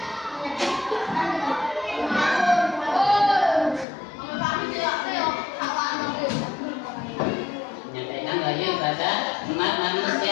Menyampaikan wahyu pada umat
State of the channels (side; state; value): right; drops out; at 3.9 s